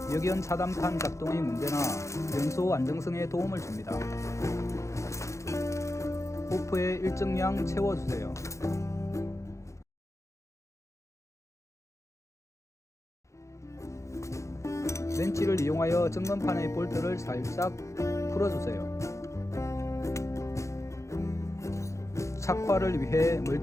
역연 차단판 작동의 문제나 연소 안정성에 도움을 줍니다. 호프에 일정량 채워주세요. 렌치를 이용하여 점검판의 볼트를 살짝 풀어주세요. 착화를 위해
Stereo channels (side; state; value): right; late; 0.14 ms